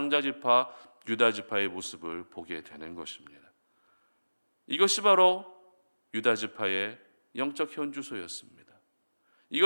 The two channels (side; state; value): both; inverted; correlation -1.00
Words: 유다지파의 모습을 보게 되는 것입니다. 이것이 바로 유다지파의 영적 현주소였습니다.